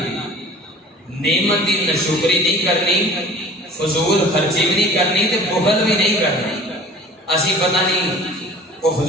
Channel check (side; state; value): both; normal; correlation 0.44